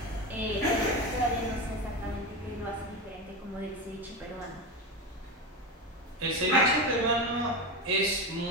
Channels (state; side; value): normal; both; correlation 0.19